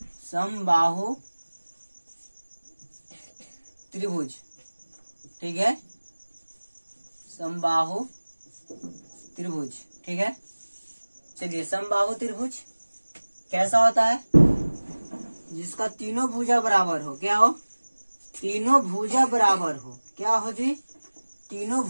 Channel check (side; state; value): both; inverted; correlation -1.00